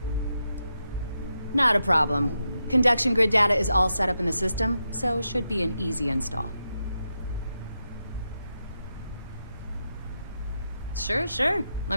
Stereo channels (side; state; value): both; inverted; correlation -0.86